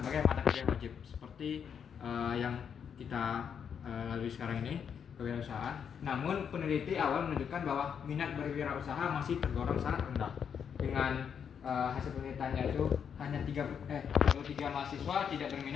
mata kuliah wajib seperti yang kita lalui sekarang ini, kewirausahaan. Namun peneliti awal menunjukkan bahwa minat berwirausaha masih tergolong sangat rendah. Dengan hasil penelitiannya itu hanya 33 mahasiswa tidak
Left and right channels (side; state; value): right; quieter; 7.5 dB